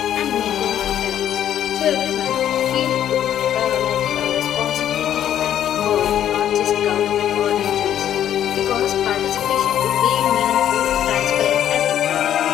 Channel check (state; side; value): quieter; right; 10.7 dB